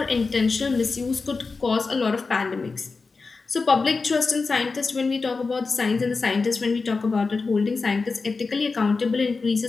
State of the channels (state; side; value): quieter; right; 4.3 dB